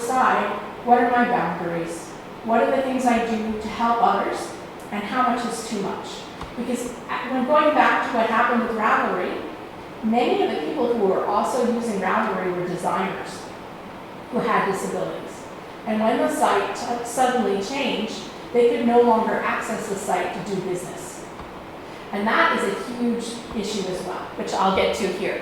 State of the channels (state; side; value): identical; both; correlation 1.00